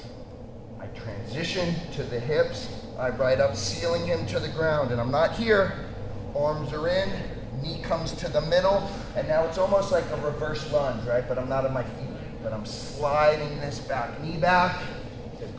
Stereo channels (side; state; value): both; identical; correlation 1.00